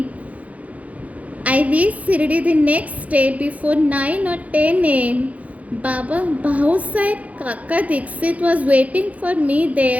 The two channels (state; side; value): late; left; 0.069 ms